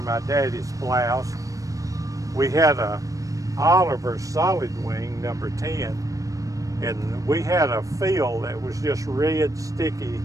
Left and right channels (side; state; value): left; late; 0.16 ms